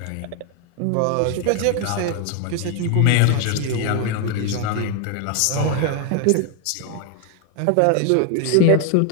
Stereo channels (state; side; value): different; both; correlation 0.01